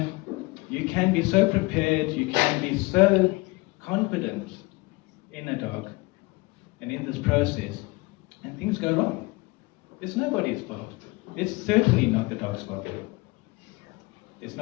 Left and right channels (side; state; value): right; quieter; 23.8 dB